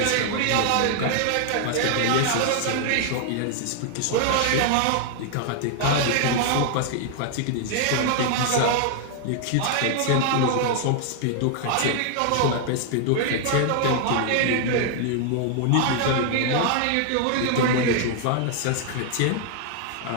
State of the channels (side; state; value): both; different; correlation 0.00